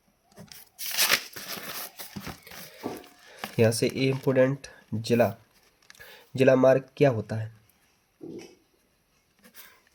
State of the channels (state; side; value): identical; both; correlation 1.00